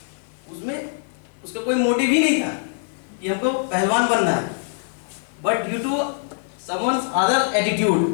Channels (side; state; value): right; silent; 56 dB below the other